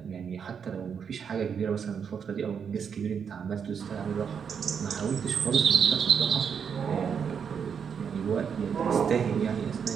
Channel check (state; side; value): quieter; left; 7.0 dB